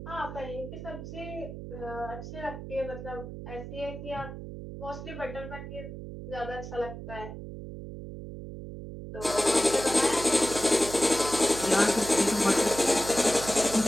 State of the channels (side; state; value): right; noise; hum, 10 dB below the sound